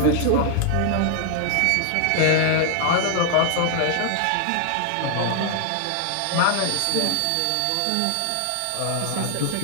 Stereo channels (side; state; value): both; different; correlation 0.00